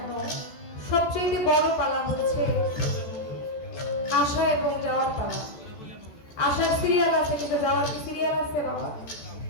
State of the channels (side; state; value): right; late; 14 ms